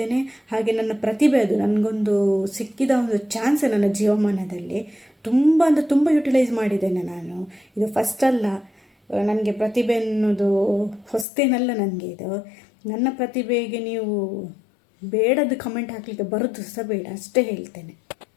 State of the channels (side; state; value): right; drops out; at 11.2 s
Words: ಹಾಗೆ ನನ್ನ ಪ್ರತಿಭೆ ಅದು ನನಗೊಂದು ಸಿಕ್ಕಿದ ಒಂದು ಚಾನ್ಸ್ ನನ್ನ ಜೀವಮಾನದಲ್ಲಿ. ತುಂಬ ಅಂದರೆ ತುಂಬ ಯುಟಿಲೈಸ್ ಮಾಡಿದ್ದೇನೆ ನಾನು. ಇದು ಫಸ್ಟ್ ಅಲ್ಲ, ನನಗೆ ಪ್ರತಿಭೆ ಅನ್ನೋದು ಹೊಸ್ತೇನಲ್ಲ ನನಗೆ. ಇದು ನನ್ನ ಪ್ರತಿಭೆಗೆ ನೀವು ಬೇಡದ್ದು ಕಮೆಂಟ್ ಹಾಕಲಿಕ್ಕೆ ಬರೋದು ಸಹ ಬೇಡ, ಅಷ್ಟೇ ಹೇಳ್ತೇನೆ.